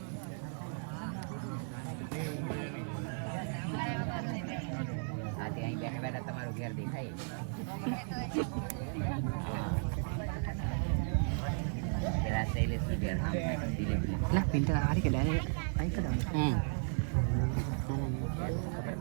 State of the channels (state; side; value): silent; left; 54 dB below the other